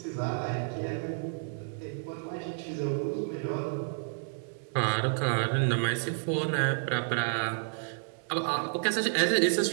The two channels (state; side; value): silent; left; 57 dB below the other